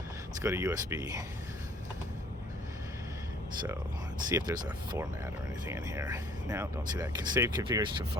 let's go to USB. So let's see if there's a format or anything in here. Now, don't see that. Save configuration to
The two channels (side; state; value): both; normal; correlation 0.57